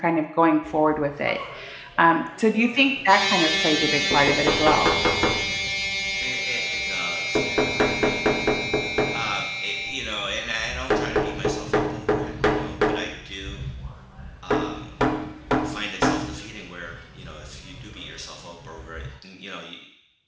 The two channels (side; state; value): both; identical; correlation 1.00